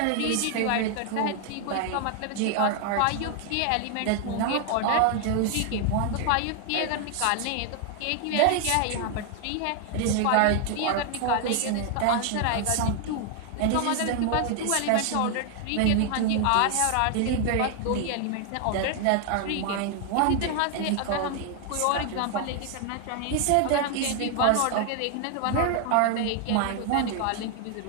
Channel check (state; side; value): different; both; correlation 0.00